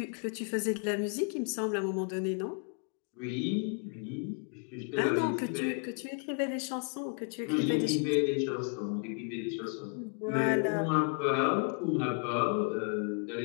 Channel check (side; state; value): right; quieter; 38.6 dB